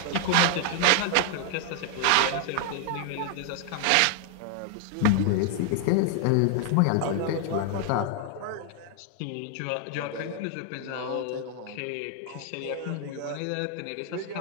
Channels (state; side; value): different; both; correlation 0.00